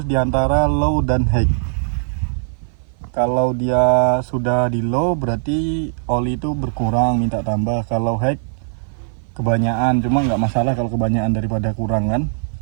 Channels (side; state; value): left; silent; 56 dB below the other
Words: diantara low dan high. Kalau dia sudah di low berarti oli itu berkurang, minta tambah. Kalau high kebanyakan, cuma nggak masalah kalau kebanyakan daripada kurang kan.